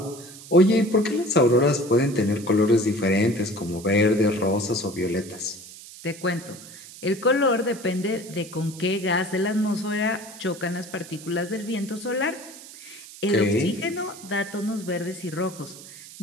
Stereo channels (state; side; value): noise; right; hiss, 17 dB below the sound